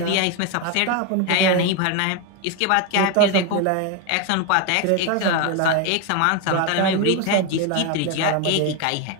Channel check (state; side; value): different; both; correlation 0.01